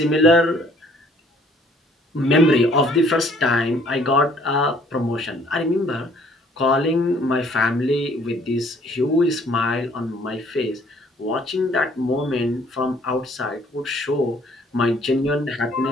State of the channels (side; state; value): both; normal; correlation 0.59